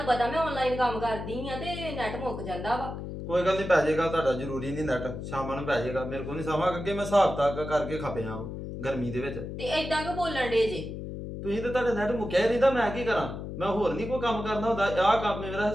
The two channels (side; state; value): left; noise; hum, 7 dB below the sound